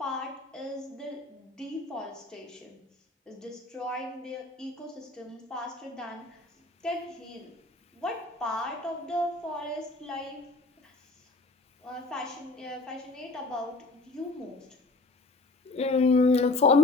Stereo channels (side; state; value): right; quieter; 3.2 dB